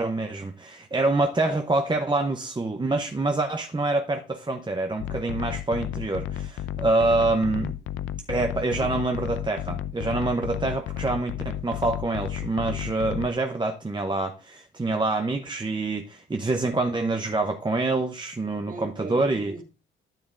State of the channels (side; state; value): both; normal; correlation 0.62